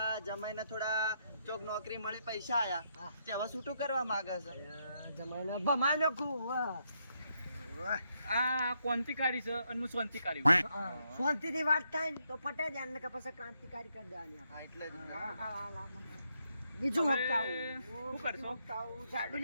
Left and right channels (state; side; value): inverted; both; correlation -0.78